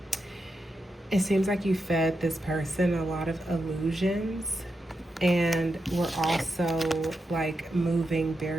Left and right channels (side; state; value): both; normal; correlation 0.87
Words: it seems like you fed this person a lot of illusions, and we're also like moving